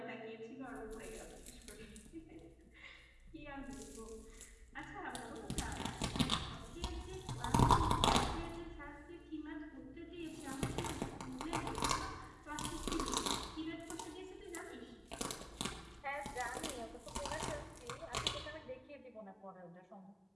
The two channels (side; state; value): both; identical; correlation 1.00